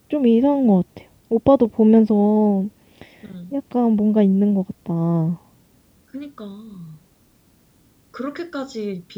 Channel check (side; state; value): both; identical; correlation 1.00